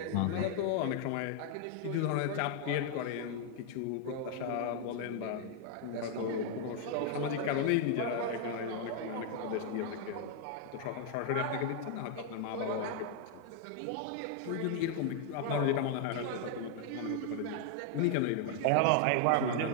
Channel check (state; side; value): different; both; correlation 0.00